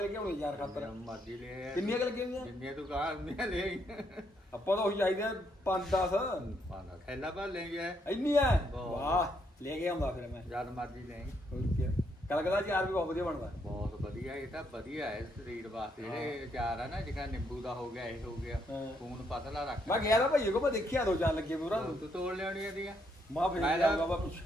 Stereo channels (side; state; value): both; normal; correlation 0.74